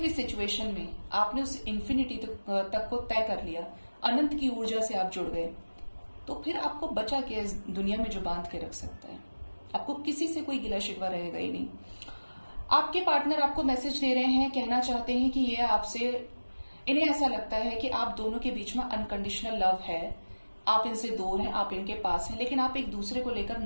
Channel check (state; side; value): inverted; both; correlation -1.00